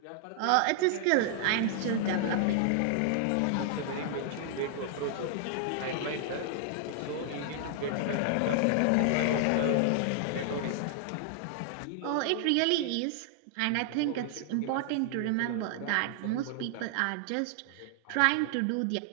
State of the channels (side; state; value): both; different; correlation 0.00